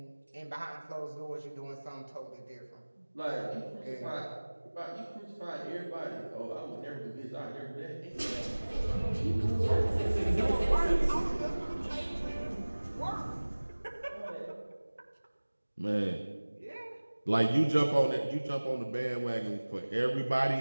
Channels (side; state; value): both; inverted; correlation -1.00